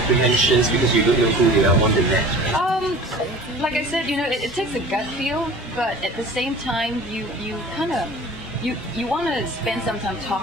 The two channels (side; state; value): both; normal; correlation 0.42